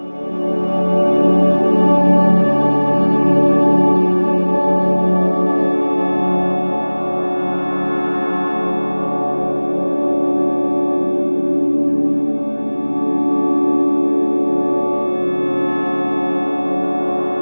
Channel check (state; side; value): inverted; both; correlation -1.00